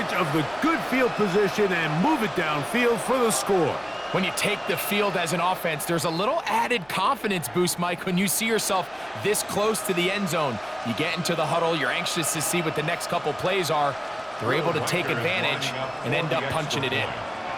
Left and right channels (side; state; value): right; noise; hum, 30 dB below the sound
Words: of the good field position and move it downfield for the score. When you take the field as an offense, there's a little added confidence boost, Mike, when you see yourself this close to the end zone. You get into the huddle, you're anxious to see what the next couple plays are. They're able to take advantage and end up punching it in.